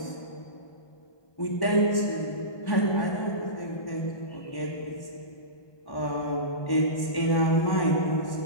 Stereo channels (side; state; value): right; late; 1.2 ms